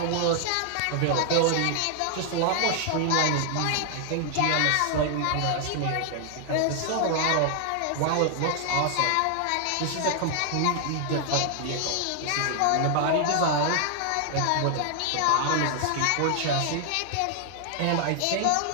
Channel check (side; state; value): both; different; correlation 0.00